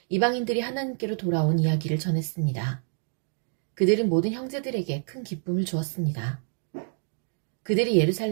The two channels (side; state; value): left; silent; 55 dB below the other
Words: 이방인들이 하나님께로 돌아온 이야기를 전했습니다. 그들은 모든 형제들에게 큰 기쁨을 주었습니다. 그들이